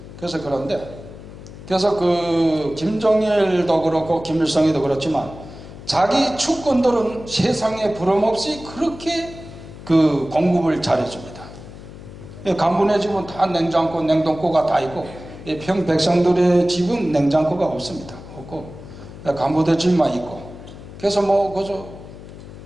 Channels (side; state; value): left; noise; hum, 15 dB below the sound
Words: 그래서 그래서 그 김정일도 그렇고 김일성이도 그렇지만 자기 축권들은 세상에 부름없이 그렇게 그 공급을 잘해줍니다. 간부네 집은 다 냉장고, 냉동고가 다 있고 평 백성들의 집은 냉장고가 없습니다. 없고 간부들 집만 있고 그래서 그저